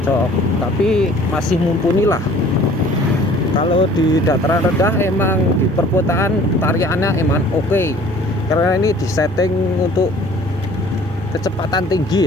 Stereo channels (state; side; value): normal; both; correlation 0.51